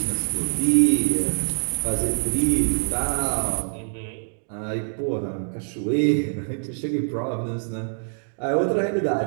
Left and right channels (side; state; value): left; silent; digital silence